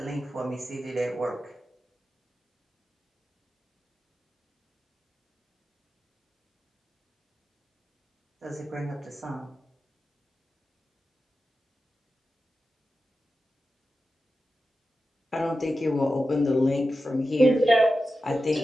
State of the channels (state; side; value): normal; both; correlation 0.92